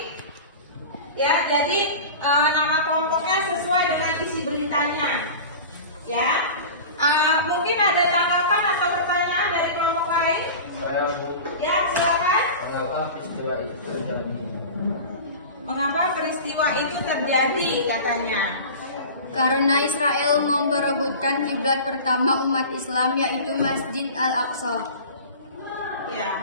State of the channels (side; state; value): both; inverted; correlation -0.35